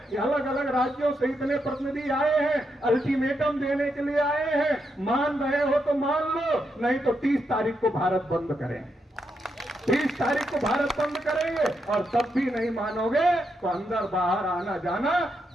ये अलग अलग राज्यों से इतने प्रतिनिधि आए हैं, अल्टीमेटम देने के लिए आए हैं। मान रहे हो तो मान लो, नहीं तो 30 तारीख को भारत बंद करें। 30 तारीख को भारत बंद करेंगे और तब भी नहीं मानोगे तो अंदर बाहर आना जाना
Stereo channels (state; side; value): normal; both; correlation 0.82